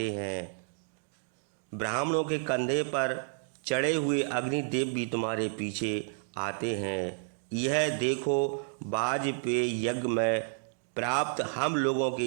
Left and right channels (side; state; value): left; silent; digital silence